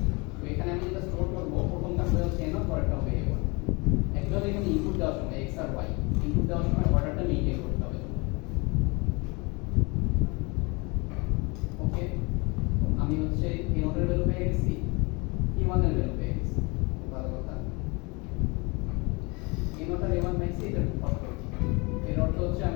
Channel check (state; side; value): quieter; right; 27.6 dB